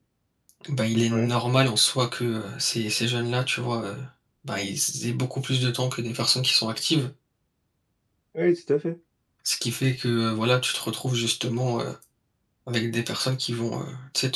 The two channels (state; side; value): identical; both; correlation 1.00